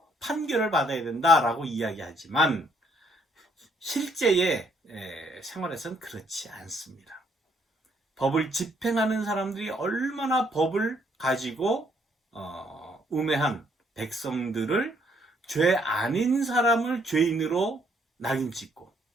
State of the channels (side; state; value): both; normal; correlation 0.68